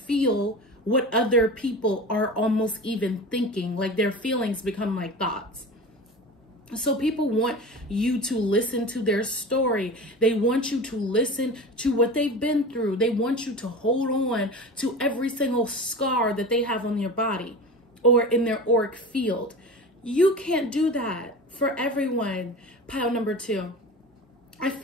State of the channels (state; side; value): normal; both; correlation 0.32